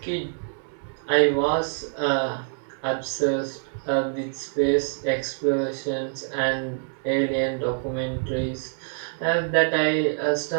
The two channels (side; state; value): left; silent; digital silence